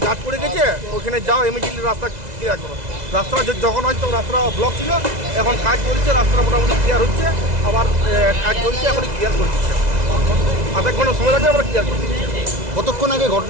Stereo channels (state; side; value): late; left; 2.0 ms